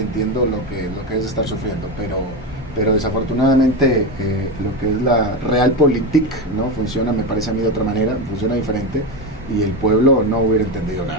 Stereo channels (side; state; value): both; normal; correlation 0.17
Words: entiendo lo que es estar sufriendo, pero desafortunadamente lo que es la realpolitik no funciona, me parece a mí, de otra manera, funciona diferente, y el pueblo no hubiera entendido